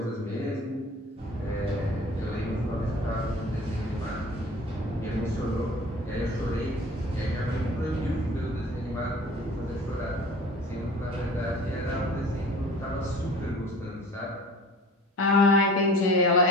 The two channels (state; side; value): normal; both; correlation 0.43